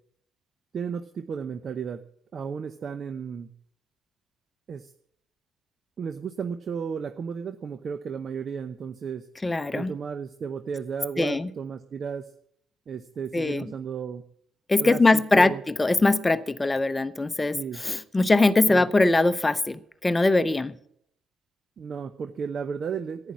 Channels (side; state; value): both; normal; correlation 0.93